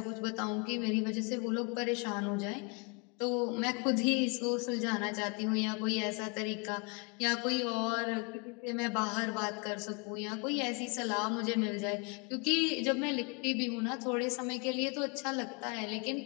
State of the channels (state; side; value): quieter; right; 32.8 dB